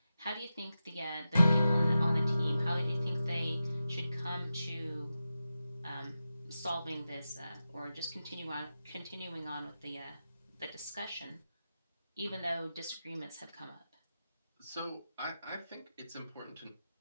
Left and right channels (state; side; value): inverted; both; correlation -0.91